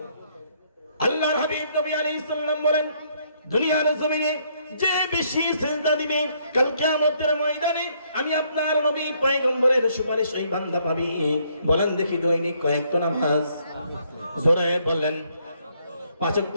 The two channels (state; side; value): inverted; both; correlation -0.70